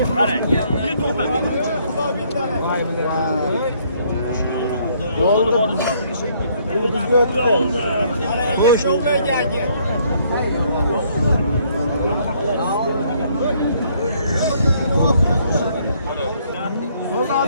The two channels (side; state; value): both; inverted; correlation -0.66